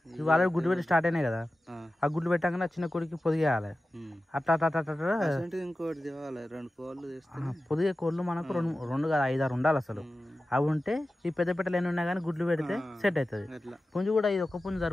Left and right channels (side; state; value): both; normal; correlation 0.94